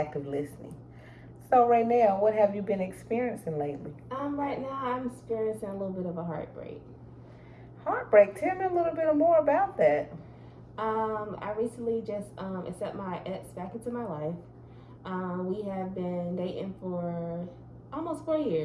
listening. So, Raynell, what have you been experiencing lately? Right now I'm experiencing a little bit of a heartbreak. Heartbreak. Tell me a little bit more about that. I recently just accept my ex back into my life. We have been dating for almost 4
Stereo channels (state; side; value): identical; both; correlation 1.00